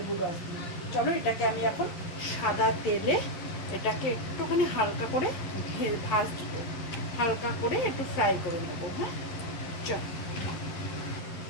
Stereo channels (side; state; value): right; late; 11 ms